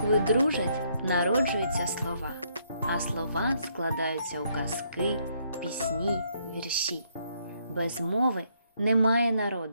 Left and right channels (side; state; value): both; inverted; correlation -0.71